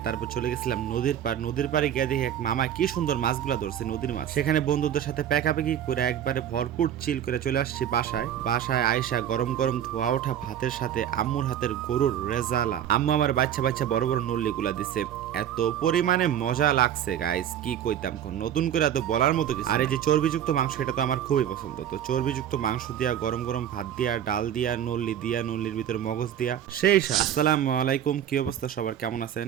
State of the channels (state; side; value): quieter; left; 10.2 dB